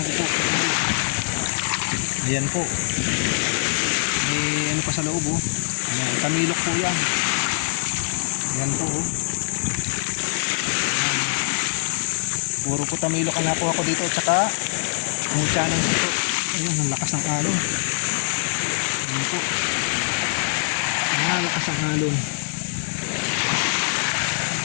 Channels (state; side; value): silent; right; digital silence